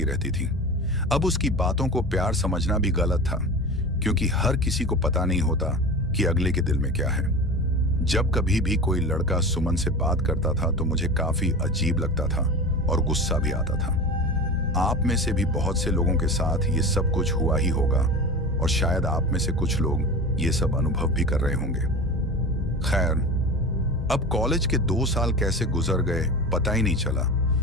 रहती थी। अब उसकी बातों को प्यार समझना भी गलत था, क्योंकि हर किसी को पता नहीं होता कि अगले के दिल में क्या है। जब कभी भी कोई लड़का सुमन से बात करता था तो मुझे काफी अजीब लगता था और गुस्सा भी आता था। आप में से भी बहुत से लोगों के साथ ये सब कुछ हुआ ही होगा, और शायद आप में से कुछ लोग ये सब अनुभव भी कर रहे होंगे। खैर, अब कॉलेज के 2 साल कैसे गुजर गए पता ही नहीं चला,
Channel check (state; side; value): normal; both; correlation 0.31